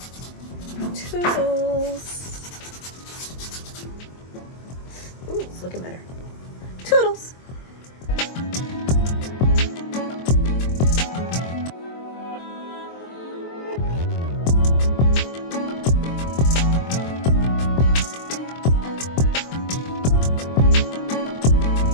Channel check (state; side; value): late; right; 23 ms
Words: Toodles. Ooh, it's looking better. Toodles.